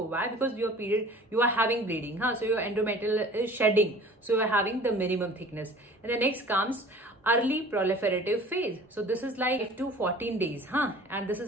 Why? Because your period, you are having bleeding. So your endometrial is shedding. So you are having the minimum thickness. And the next comes early proliferative phase. So this is like 8 to 14 days. And this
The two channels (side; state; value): both; normal; correlation 0.46